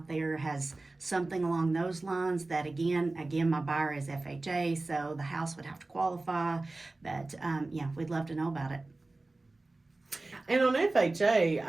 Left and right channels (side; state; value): left; quieter; 3.1 dB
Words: there has something along those lines, that again, my buyer is FHA, so the house would have to qualify. But yeah, we'd love to know about it. And on FHA,